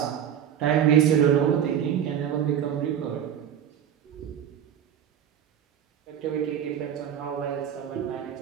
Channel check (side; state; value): left; quieter; 9.4 dB